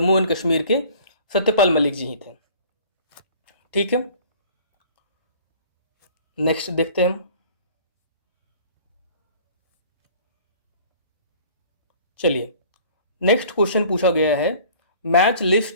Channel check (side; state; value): both; inverted; correlation -0.49